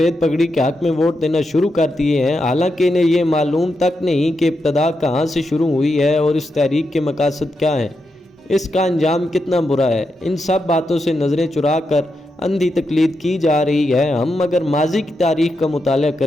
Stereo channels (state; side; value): normal; both; correlation 0.85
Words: پگڑی کے حق میں ووٹ دینا شروع کر دیے ہیں، حالانکہ انہیں یہ معلوم تک نہیں کہ ابتدا کہاں سے شروع ہوئی ہے اور اس تحریک کے مقاصد کیا ہیں، اس کا انجام کتنا برا ہے۔ ان سب باتوں سے نظریں چرا کر اندھی تقلید کی جا رہی ہے۔ ہم اگر ماضی کی تاریخ کا مطالعہ